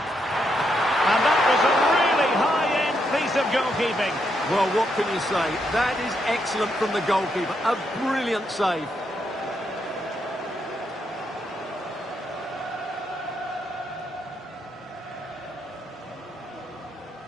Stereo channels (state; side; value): normal; both; correlation 0.79